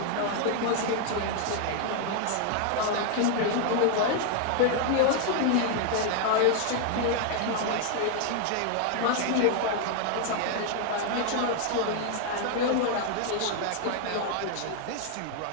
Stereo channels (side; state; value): both; different; correlation 0.00